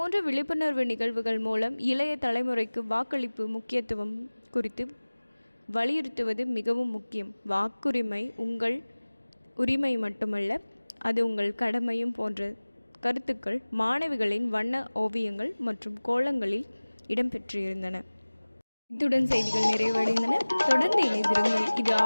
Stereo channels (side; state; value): both; inverted; correlation -1.00